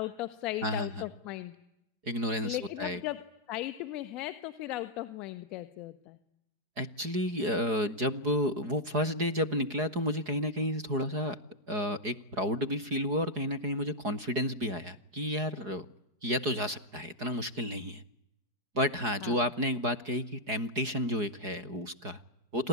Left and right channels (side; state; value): left; late; 4.8 ms